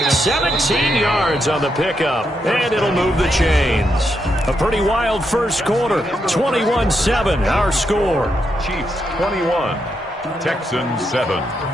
17 yards on the pickup. And it'll move the chains. A pretty wild first quarter. 21-7 our score. Chiefs 21. Texans 7.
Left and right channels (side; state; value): both; normal; correlation 0.81